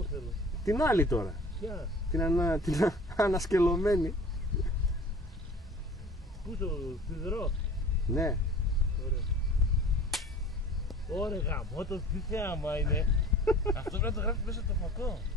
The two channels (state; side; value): normal; both; correlation 0.44